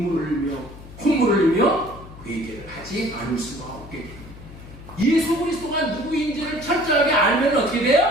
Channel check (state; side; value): noise; left; hum, 17 dB below the sound